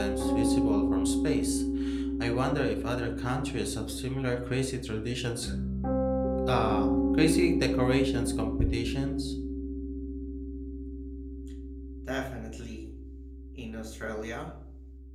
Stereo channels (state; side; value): identical; both; correlation 1.00